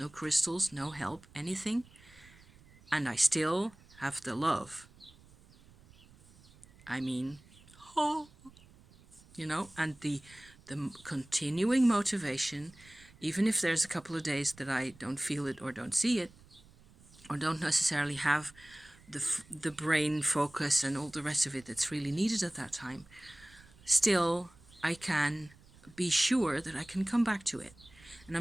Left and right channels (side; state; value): right; noise; rumble, 25 dB below the sound